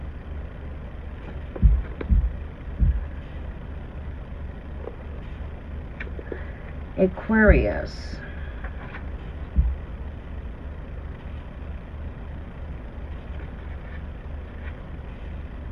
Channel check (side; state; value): both; identical; correlation 1.00